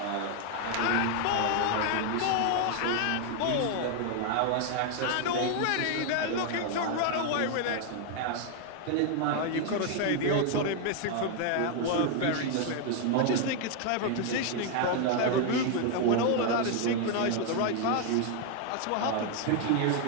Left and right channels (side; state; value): both; different; correlation 0.01